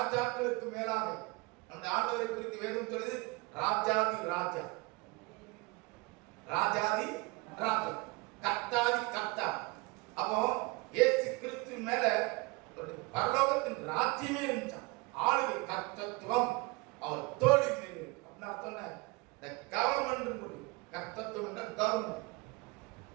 மேலாக அந்த ஆண்டவரை குறித்து வேதம் சொல்லுது, ராஜாதி ராஜா, ராஜாதி ராஜா, கர்த்தாதி கர்த்தா. அப்போ இயேசு கிறிஸ்து மேல பரலோகத்தின் ராஜ்யமே இருந்துச்சான். ஆளுகை கர்த்தத்துவம் அவர் தோழி மேல் இருக்கு. அப்படின்னு அர்த்தம் கவர்மெண்ட், கர்த்தத்துவம் என்ற கவர்மெண்ட்.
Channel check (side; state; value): left; quieter; 25.7 dB